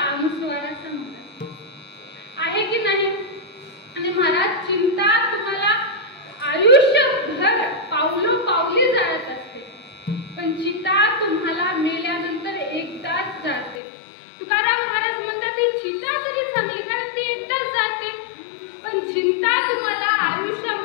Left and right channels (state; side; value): drops out; right; at 13.8 s